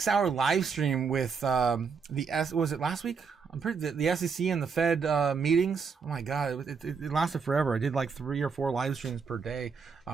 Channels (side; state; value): left; quieter; 5.6 dB